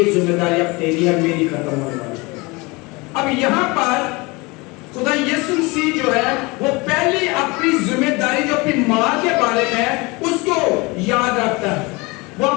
ذمہ داری اب تیری ہے، میری ختم ہونے والی ہے۔ اب یہاں پر خدا یسوع مسیح جو ہے وہ پہلی اپنی ذمہ داری جو اپنی ماں کے بارے میں ہے اس کو یاد رکھتا ہے۔ وہ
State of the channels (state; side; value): quieter; right; 25.4 dB